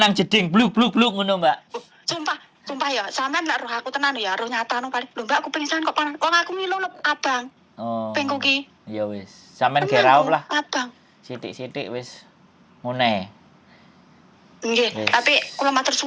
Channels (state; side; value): identical; both; correlation 1.00